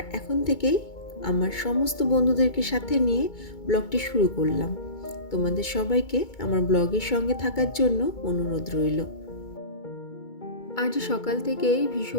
এখন থেকেই আমার সমস্ত বন্ধুদেরকে সাথে নিয়ে ব্লগটি শুরু করলাম। তোমাদের সবাইকে আমার ব্লগের সঙ্গে থাকার জন্য অনুরোধ রইল। আজ সকাল থেকেই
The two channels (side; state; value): right; late; 2.2 ms